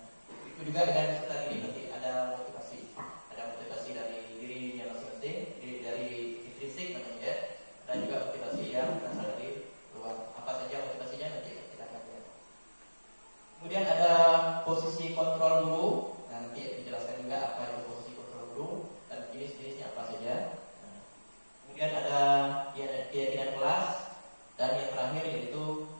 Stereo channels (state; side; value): inverted; both; correlation -1.00